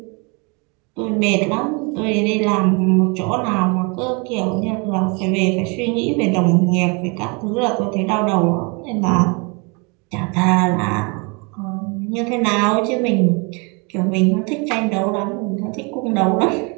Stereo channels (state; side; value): quieter; left; 31.5 dB